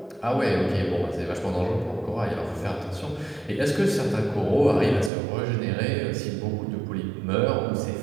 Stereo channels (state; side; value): drops out; left; at 5.1 s